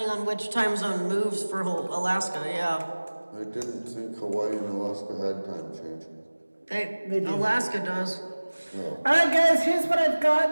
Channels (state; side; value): inverted; both; correlation -1.00